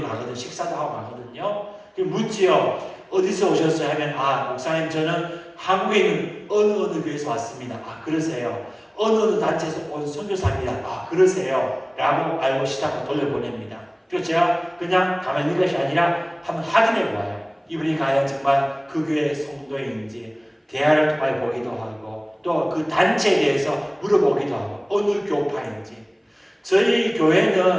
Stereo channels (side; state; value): both; identical; correlation 1.00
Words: 가거든요. 식사도 하고 가거든요. 묻지요. 어디서 오셨어요? 하면 목사님 저는 한국에 있는 어느 교회에서 왔습니다. 그러세요. 어느 단체에서 온 선교사입니다. 그러세요. 라고 알고 시작하고 돌려보냅니다. 그래서 제가 그냥 가만히 있는 것이 아니라 한번 확인해 보아요. 이분이 과연 정말 그 교회 성도인지 대화를 통해 보기도 하고 또 그 단체에 대해서 물어보기도 하고 어느 교파인지. 저희